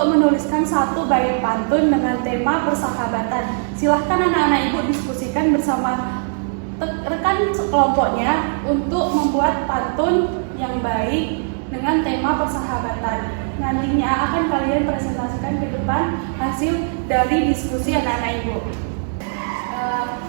menuliskan satu bait pantun dengan tema persahabatan. Silahkan anak-anak ibu diskusikan bersama rekan kelompoknya untuk membuat pantun yang baik dengan tema persahabatan. Nantinya akan kalian presentasikan ke depan hasil dari diskusi anak-anak ibu.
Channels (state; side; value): silent; left; digital silence